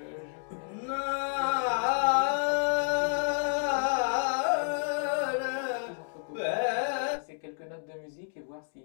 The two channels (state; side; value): silent; right; digital silence